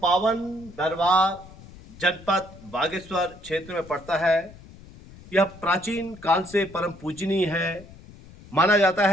पावन दरबार जनपद बागेश्वर क्षेत्र में पड़ता है। यह प्राचीन काल से परम पूजनीय है।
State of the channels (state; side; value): noise; left; rumble, 20 dB below the sound